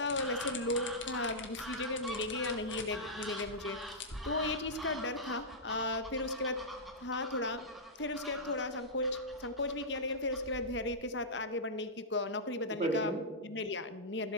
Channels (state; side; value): normal; both; correlation -0.11